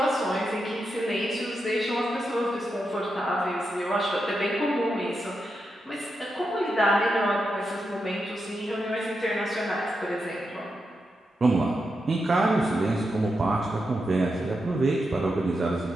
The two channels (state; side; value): normal; both; correlation 0.86